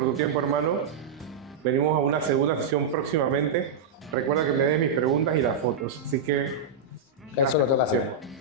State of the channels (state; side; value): quieter; left; 4.9 dB